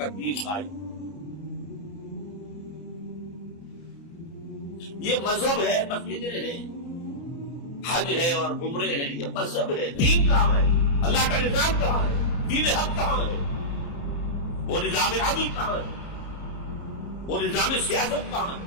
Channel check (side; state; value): right; late; 29 ms